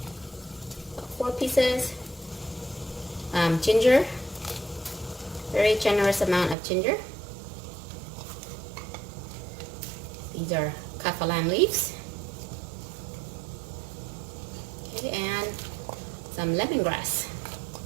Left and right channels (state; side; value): drops out; left; at 6.6 s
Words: 4 pieces, ginger, very generous amount of ginger. These are kaffir leaves. Okay, and some lemongrass.